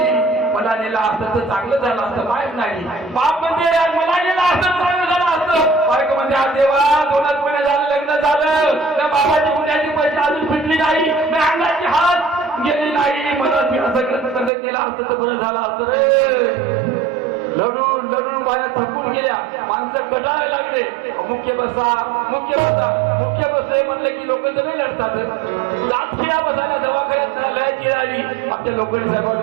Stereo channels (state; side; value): drops out; left; at 14.5 s